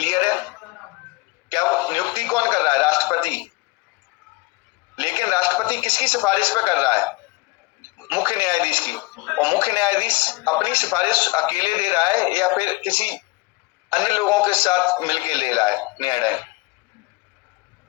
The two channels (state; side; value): quieter; right; 23.3 dB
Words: है? क्या नियुक्ति कौन कर रहा है, राष्ट्रपति। लेकिन राष्ट्रपति किसकी सिफारिश पे कर रहा है, मुख्य न्यायाधीश की। और मुख्य न्यायाधीश अपनी सिफारिश अकेले दे रहा है या फिर किसी अन्य लोगों के साथ मिलकर ले रहा है निर्णय,